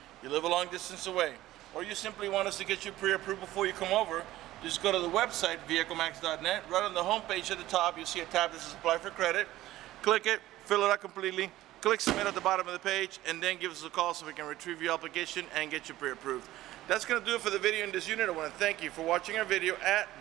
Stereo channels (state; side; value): quieter; left; 15.5 dB